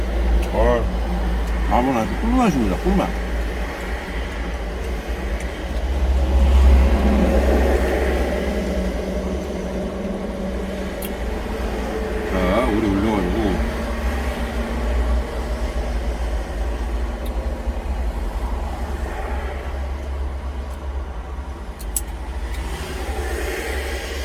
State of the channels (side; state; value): both; identical; correlation 1.00